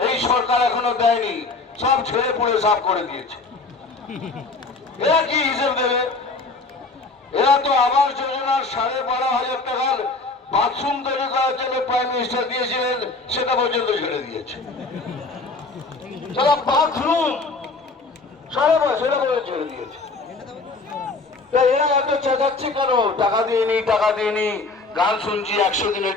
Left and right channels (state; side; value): quieter; right; 3.7 dB